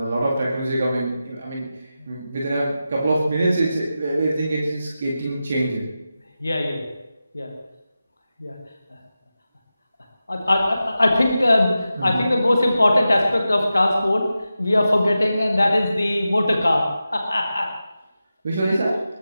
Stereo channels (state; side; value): inverted; both; correlation -0.92